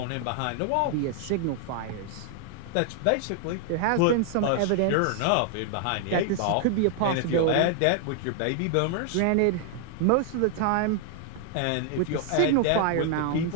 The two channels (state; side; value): different; both; correlation 0.00